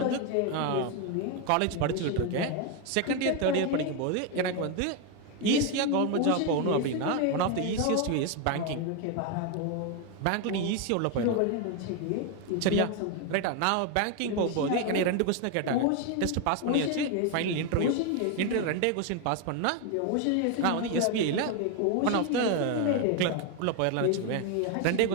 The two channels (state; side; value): different; both; correlation 0.01